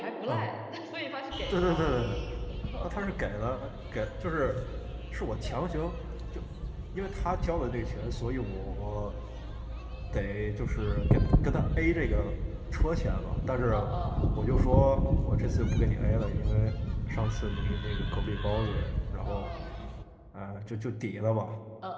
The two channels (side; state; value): both; identical; correlation 1.00